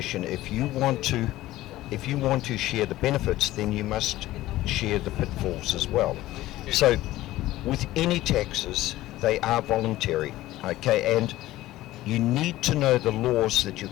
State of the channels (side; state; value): right; quieter; 16.1 dB